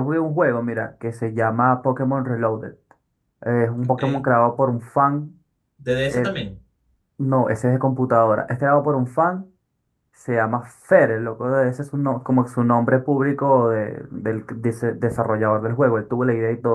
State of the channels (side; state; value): both; identical; correlation 1.00